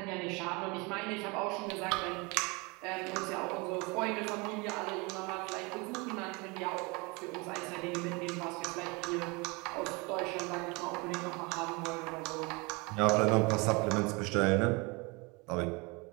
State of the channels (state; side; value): quieter; left; 27.5 dB